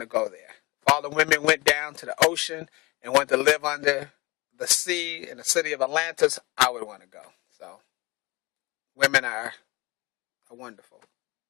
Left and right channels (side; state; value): right; quieter; 23.7 dB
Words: to go there. If all the women went down to the ocean and wanted to live under the sea in the city of Atlantis, I would want to go. So, women are wonderful.